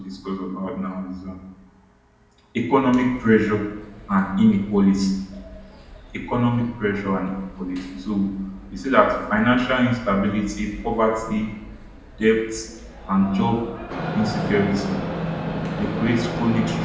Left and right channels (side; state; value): both; identical; correlation 1.00